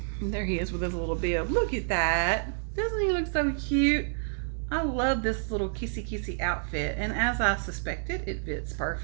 And there he is with his little bib. Look at that. Doesn't he look so cute? I love this little kissy outfit, and as I suspected, it fits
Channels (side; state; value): left; silent; digital silence